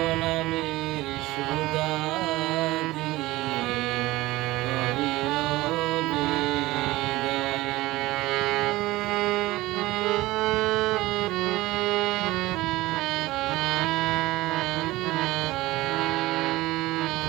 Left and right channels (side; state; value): left; quieter; 18.6 dB